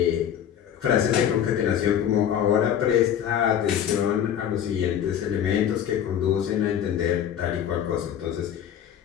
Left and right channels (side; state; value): right; quieter; 9.6 dB